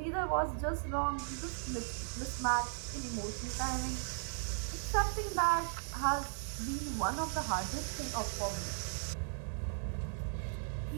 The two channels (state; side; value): silent; left; 53 dB below the other